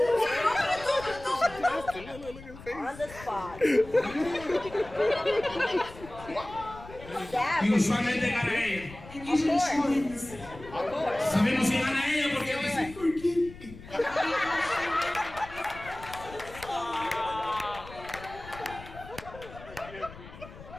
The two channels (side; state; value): left; noise; rumble, 16 dB below the sound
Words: On the spot. Y usualmente gana ella. And usually she wins. Sabemos que gana ella porque ella dice, forgive me.